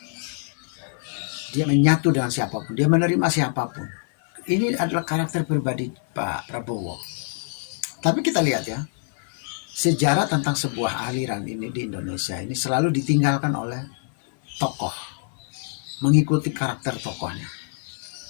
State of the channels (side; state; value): right; silent; 62 dB below the other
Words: Dia menyatu dengan siapapun, dia menerima siapapun. Ini adalah karakter pribadi Pak Prabowo. Tapi kita lihat ya, sejarah tentang sebuah aliran ini di Indonesia ini selalu ditinggalkan oleh tokoh, mengikuti karakter tokohnya.